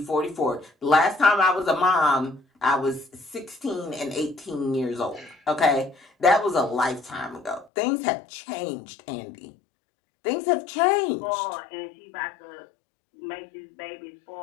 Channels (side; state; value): right; drops out; at 7.7 s